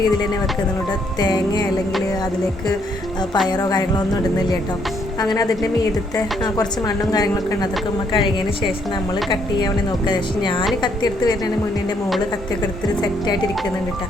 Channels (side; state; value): both; normal; correlation 0.71